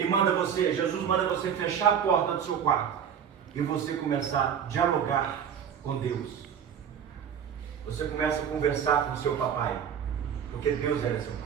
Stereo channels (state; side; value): quieter; left; 8.1 dB